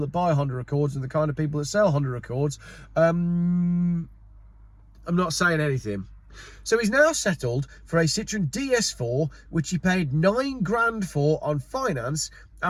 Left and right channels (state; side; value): identical; both; correlation 1.00